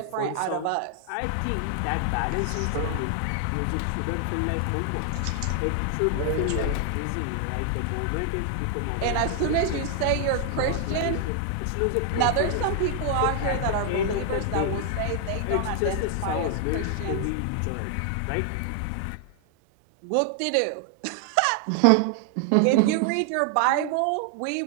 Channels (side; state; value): both; different; correlation 0.00